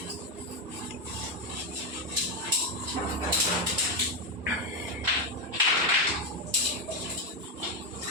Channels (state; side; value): normal; both; correlation 0.08